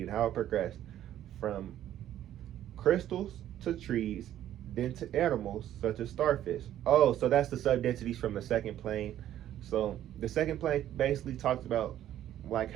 and how it progressed from crystals to trees, then to animals such as starfish. Oh, so that's the sub-densities from the second plane. So the second plane basically talks about like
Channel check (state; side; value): quieter; left; 11.9 dB